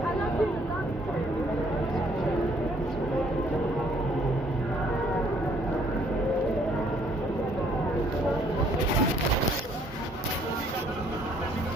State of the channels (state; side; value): normal; both; correlation 0.63